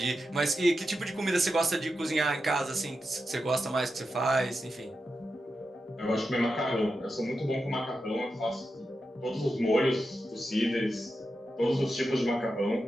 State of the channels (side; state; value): both; normal; correlation 0.89